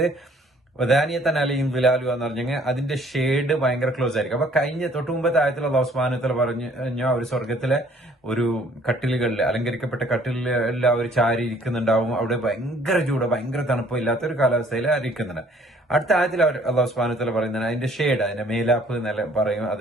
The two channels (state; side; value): normal; both; correlation 0.59